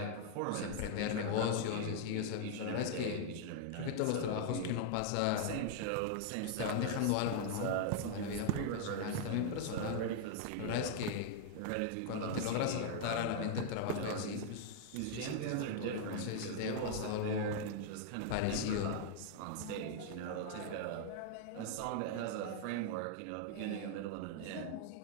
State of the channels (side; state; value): both; different; correlation -0.01